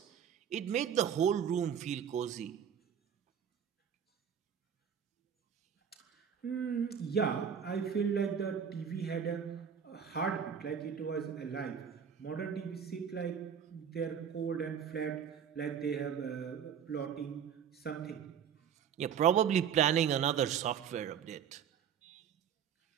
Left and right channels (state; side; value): quieter; left; 8.0 dB